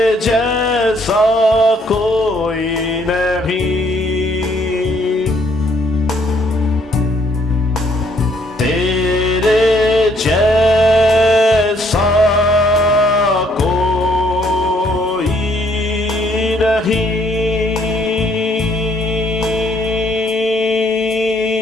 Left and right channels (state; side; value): normal; both; correlation 0.67